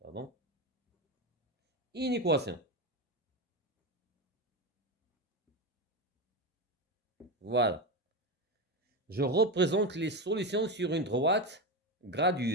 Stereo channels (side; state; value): both; normal; correlation 0.16